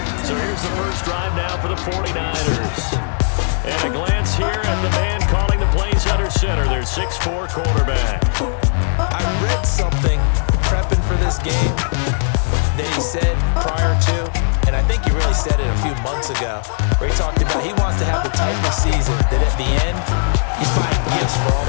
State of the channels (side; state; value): right; silent; digital silence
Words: So here's the first drive now for the 49ers. And a glance here at the man calling the plays under center. Their 6'4" quarterback. I read something prepping for this game that he said prior to, and I think he really said it a few months ago, where he talked about he wants to have the type of season that at the end, he's buying gifts for all